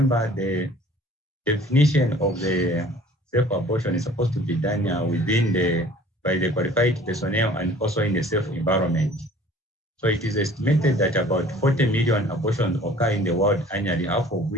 the definition of the safe abortion is supposed to be done by the qualified personnel and also in a safe environment. So it is estimated that about 40 million abortions occur in the world annually, half of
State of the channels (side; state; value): both; normal; correlation 0.50